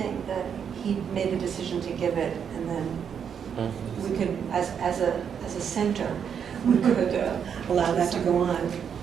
that he made the decision to give it, and then we could, as a center, we could allow that to go on.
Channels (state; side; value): quieter; left; 7.6 dB